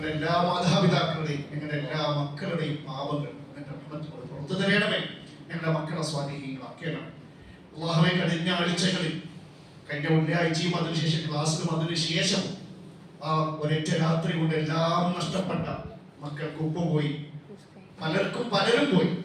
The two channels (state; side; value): identical; both; correlation 1.00